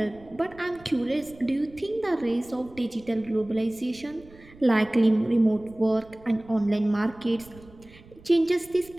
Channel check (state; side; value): noise; right; rumble, 23 dB below the sound